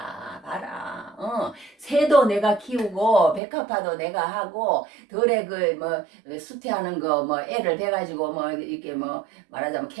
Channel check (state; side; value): drops out; left; at 3.4 s